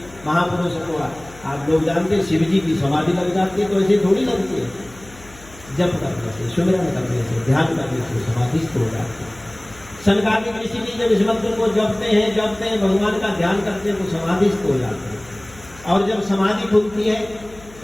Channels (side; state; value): left; noise; hum, 22 dB below the sound